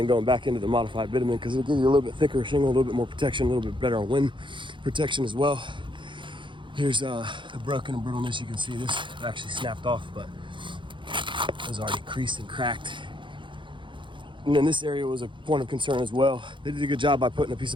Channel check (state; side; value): late; left; 0.23 ms